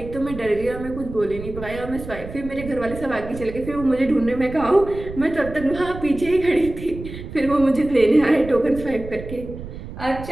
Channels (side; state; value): right; noise; rumble, 12 dB below the sound